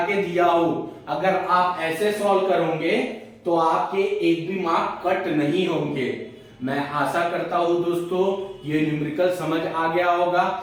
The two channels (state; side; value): identical; both; correlation 1.00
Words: के दिया हूं। अगर आप ऐसे सॉल्व करोगे तो आपके 1 भी मार्क कट नहीं होंगे। मैं आशा करता हूं दोस्तों ये न्यूमेरिकल समझ आ गया होगा।